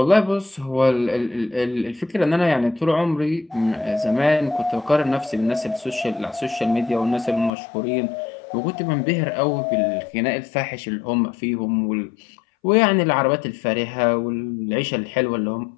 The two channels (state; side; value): drops out; right; at 7.5 s